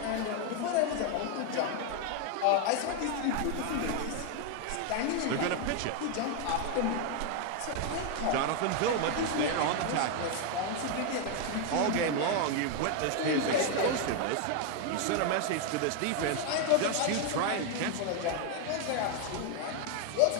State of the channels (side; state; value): both; different; correlation 0.01